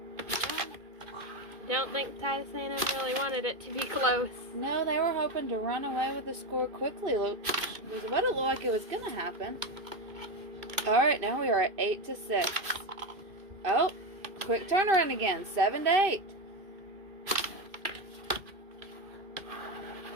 Don't think Titus A&M really wanted it to be close. No, they were hoping to run away with the score quickly. Look, was what it looked like it was going to happen. All right, now we are at 8-6. Oh, quick turnaround again, 7-8.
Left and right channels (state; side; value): late; left; 2.7 ms